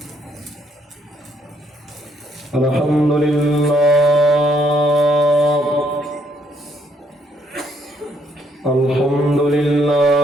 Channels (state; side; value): normal; both; correlation 0.71